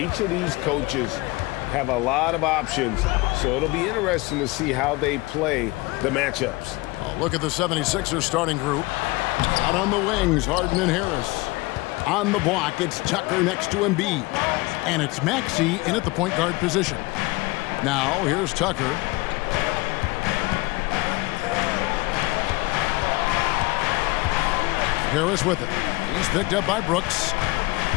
of these coaches have a lot of options, so it'll be interesting to see how they play the matchups. Oh, look at the 76ers starting group. Out on the wings, Harden and Harris. On the block, it's Tucker next to Embiid. And it's Maxey in at the point guard position. Now, here's Tucker. Harris with it. He's picked up by Brooks.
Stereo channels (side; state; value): right; quieter; 22.7 dB